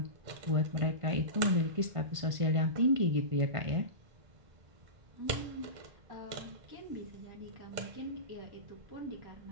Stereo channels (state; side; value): late; left; 1.5 ms